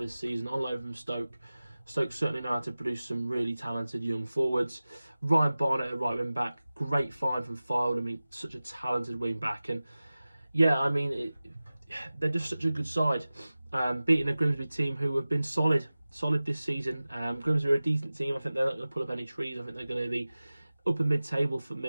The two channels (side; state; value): both; inverted; correlation -0.97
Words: season on loan from Stoke. Stoke certainly know how to produce some really talented young forwards. Ryan Barnett at right wing back, great find from Fylde. I mean, such a talented wing back, and yeah, I mean, they're just such a good side. Beating a Grimsby team who have been solid this season. Grimsby are a decent team. I think they're not going to pull up any trees. I think they're going to be upper mid-table for